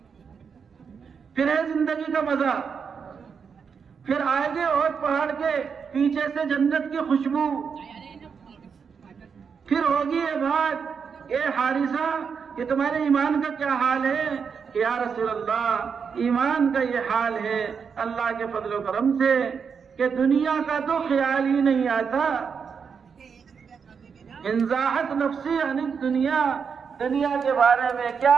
پھر ہے زندگی کا مزہ. پھر آگے اور پہاڑ کے پیچھے سے جنت کی خوشبو. پھر ہوگی یہ بات, اے حارثہ کہ تمہارے ایمان کا کیا حال ہے؟ کہ یا رسول اللہ ایمان کا یہ حال ہے اللہ کے فضل و کرم سے کہ دنیا کا تو خیال ہی نہیں آتا. انزاحت نفسی عن الدنیا, دنیا کے بارے میں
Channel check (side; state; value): left; quieter; 6.2 dB